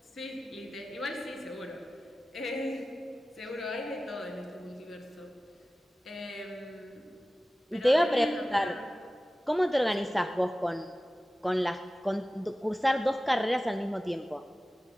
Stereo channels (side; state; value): both; normal; correlation 0.96